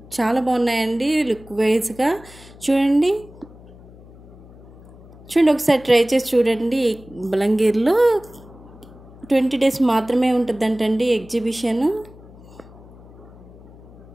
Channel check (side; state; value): left; noise; hum, 21 dB below the sound